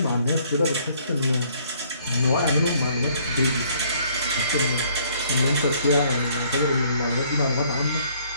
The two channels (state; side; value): inverted; both; correlation -0.62